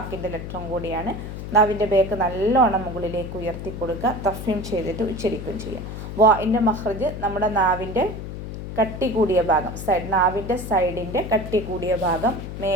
ലെറ്ററും കൂടിയാണ്. നാവിൻ്റെ ബേക്ക് നല്ലോണം മുകളിലേക്ക് ഉയർത്തി കൊടുക്കുക. തഫ്ഹീം ചെയ്തിട്ട് ഉച്ചരിക്കുകയും ചെയ്യുക. വാഇൻ്റെ മഖ്റജ് നമ്മുടെ നാവിൻ്റെ കട്ടി കൂടിയ ഭാഗം നാവിൻ്റെ സൈഡിൻ്റെ കട്ടി കൂടിയ ഭാഗം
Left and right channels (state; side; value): noise; left; hum, 8 dB below the sound